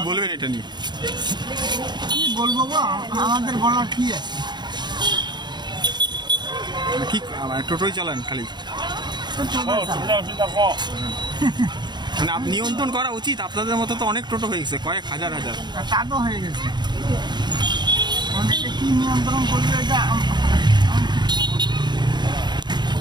বলবেন এটা নিয়ে? কি বলবো গো, আমাদের বলার কি আছে? কি টোটোই চালান খালি? মানে নিয়ন্ত্রণ করা উচিত, আপনাদের মতো তো অনেক টোটো হয়ে গেছে, কয়েক হাজার হাজার টাটো হয়ে গেছে। অনেকে কি নিয়ন্ত্রণ করবে এটা?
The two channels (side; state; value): left; late; 0.21 ms